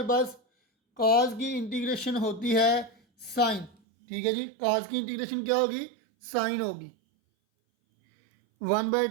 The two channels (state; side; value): drops out; left; at 3.8 s